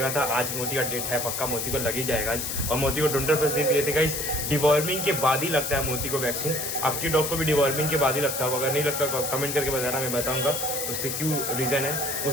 था। आज मोती का डेट है, पक्का मोती को लग ही जाएगा आज। और मोती को डोंटर पर दे दिए थे गाइस। डिवॉर्मिंग के बाद ही लगता है मोती को वैक्सीन। आपकी डॉग को भी डिवॉर्मिंग के बाद ही लगता होगा, अगर नहीं लगता कमेंट करके बताना, मैं बताऊंगा उससे क्यों रीजन है।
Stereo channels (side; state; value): left; noise; hiss, 3 dB below the sound